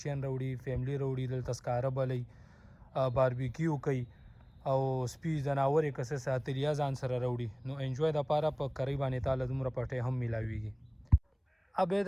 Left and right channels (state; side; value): identical; both; correlation 1.00